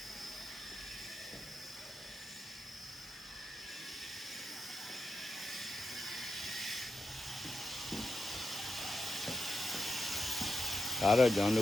ဒါတော့ကျွန်တ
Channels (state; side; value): normal; both; correlation 0.91